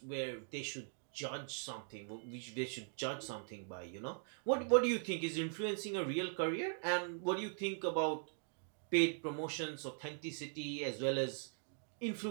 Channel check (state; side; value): silent; left; digital silence